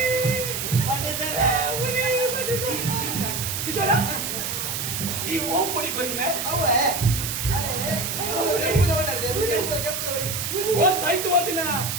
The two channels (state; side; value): noise; right; hiss, 3 dB below the sound